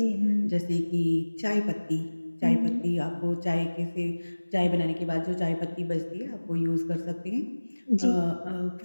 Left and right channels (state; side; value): inverted; both; correlation -1.00